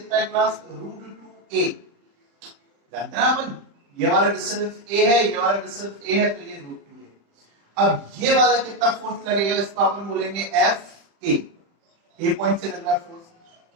है क्लास? √2a। जानते हैं ना अपन, ये वाला डिस्टेंस a है, ये वाला डिस्टेंस a है, तो ये √2a। अब ये वाला कितना फोर्स लगेगा, इसको अपन बोलेंगे एफ ए पॉइंट से लग रहा फोर्स।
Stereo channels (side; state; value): left; late; 35 ms